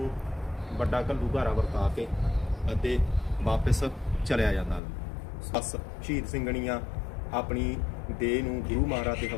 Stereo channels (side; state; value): right; drops out; at 4.8 s